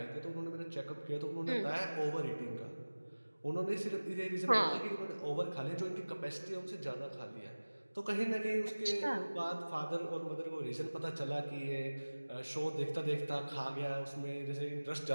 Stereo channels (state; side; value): inverted; both; correlation -1.00